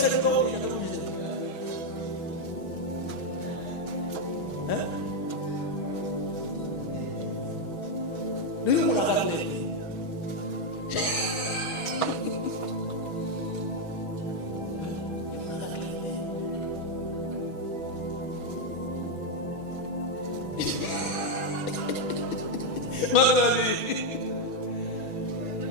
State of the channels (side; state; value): right; late; 6.2 ms